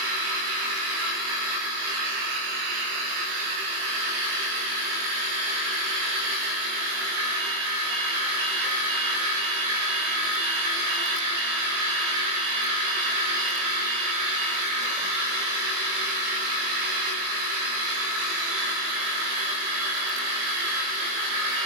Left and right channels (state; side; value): late; left; 21 ms